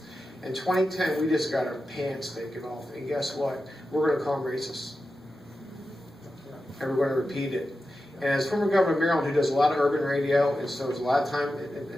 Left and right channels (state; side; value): normal; both; correlation 0.91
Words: In 2010, we just got our pants taken off, and guess what? We're going to call them racist. And we're going to repeat it. And as former governor of Maryland, who does a lot of urban radio, and so there's a lot of time,